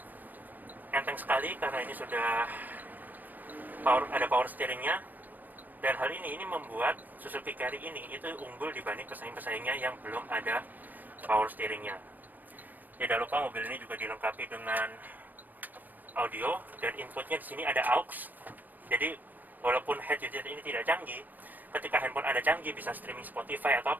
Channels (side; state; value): left; late; 0.087 ms